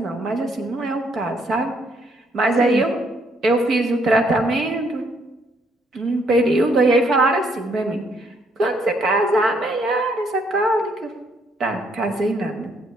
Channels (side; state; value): both; normal; correlation 0.70